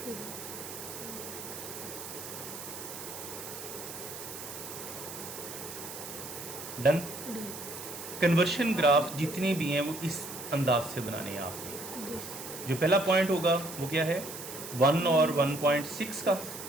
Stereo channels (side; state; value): right; noise; hiss, 10 dB below the sound